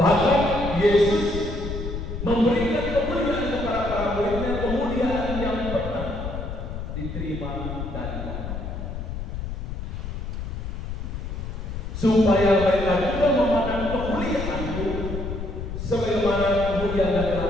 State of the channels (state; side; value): noise; left; rumble, 6 dB below the sound